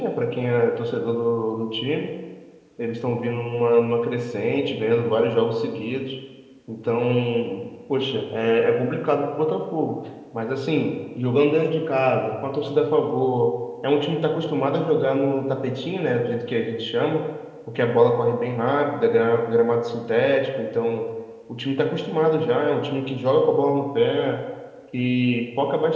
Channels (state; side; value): identical; both; correlation 1.00